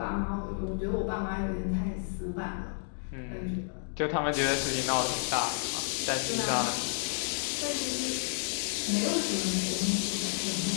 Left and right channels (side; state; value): right; silent; digital silence